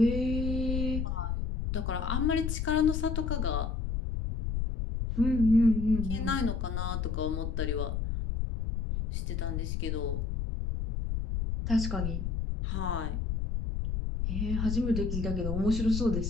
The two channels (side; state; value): left; noise; rumble, 1 dB below the sound